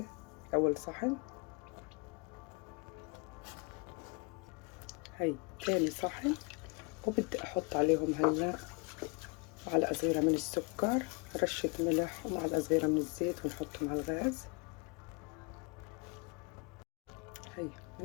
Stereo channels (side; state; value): right; quieter; 31.1 dB